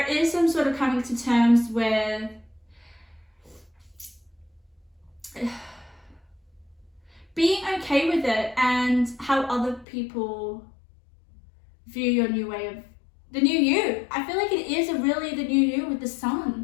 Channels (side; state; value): right; drops out; at 9.9 s